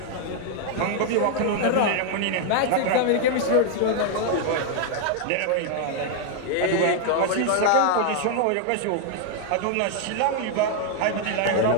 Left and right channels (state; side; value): different; both; correlation 0.00